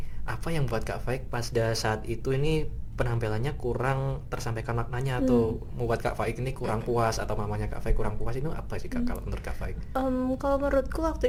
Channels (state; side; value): identical; both; correlation 1.00